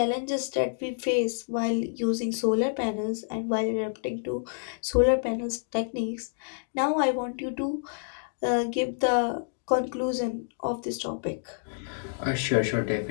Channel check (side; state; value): right; silent; digital silence